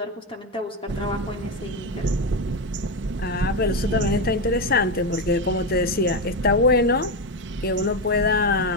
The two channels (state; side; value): normal; both; correlation 0.12